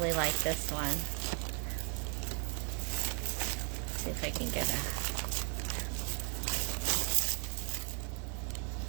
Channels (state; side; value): quieter; left; 39.4 dB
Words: liked this one. Let's see if I can get a...